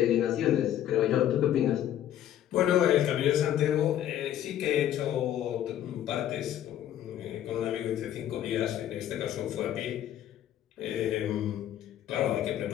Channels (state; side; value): quieter; right; 11.3 dB